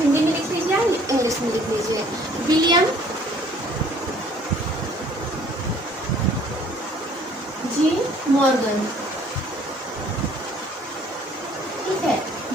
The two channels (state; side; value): normal; both; correlation 0.57